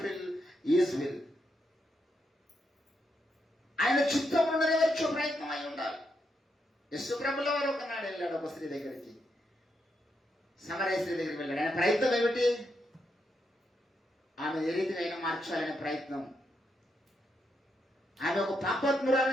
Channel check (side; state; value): both; normal; correlation 0.81